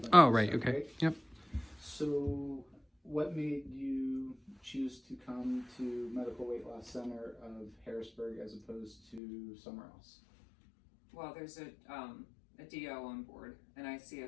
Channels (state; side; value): drops out; right; at 9.2 s